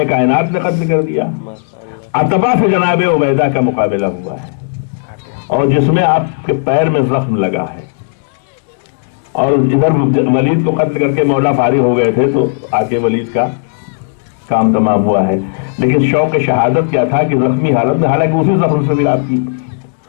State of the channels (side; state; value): right; silent; digital silence